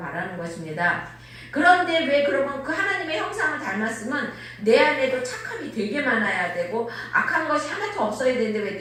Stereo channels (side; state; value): both; identical; correlation 1.00